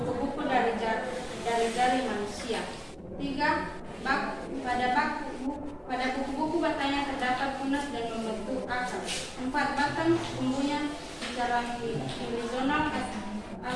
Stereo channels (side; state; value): both; identical; correlation 1.00